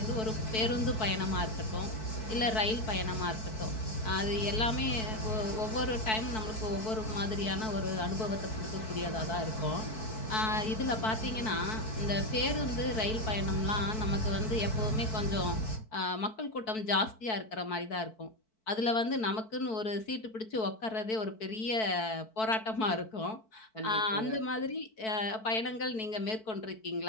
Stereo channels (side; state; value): right; late; 4.6 ms